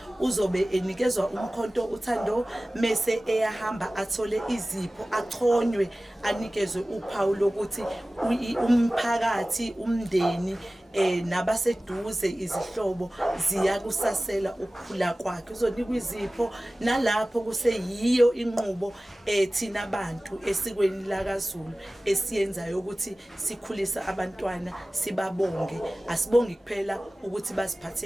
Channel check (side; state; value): both; normal; correlation 0.97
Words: uzobe enikezwa umkhonto uThando mase eyahamba athole izipho achonywe anikezwe uphawu lokuthi umphakathi umndeni nabaseduze izihlobo ziyakusasela ukukhula kwakhe uzonikwa izipho nalapho kuseyiyo inqubo thina abantu esikweni lakaZulu esiyenzayo ukuthi sikhulisa abantwana sibabonge asibongi kuphela ukuthi